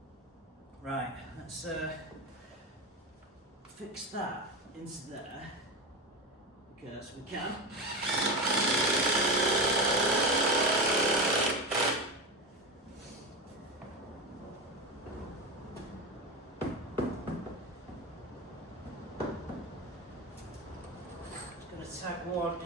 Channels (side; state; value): both; normal; correlation 0.20